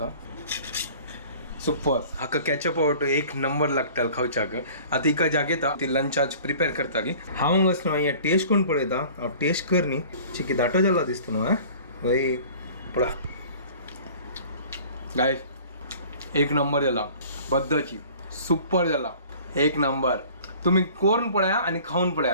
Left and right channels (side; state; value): both; inverted; correlation -0.47